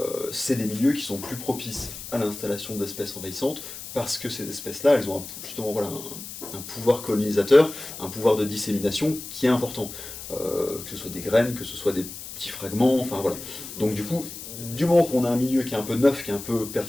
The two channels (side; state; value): left; noise; hiss, 11 dB below the sound